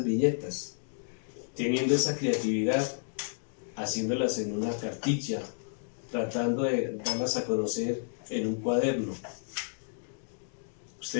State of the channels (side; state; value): right; silent; digital silence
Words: viñetas? Teniendo esa creatividad, haciéndolas en una cartilla, tratando de darlas a conocer en un cuaderno.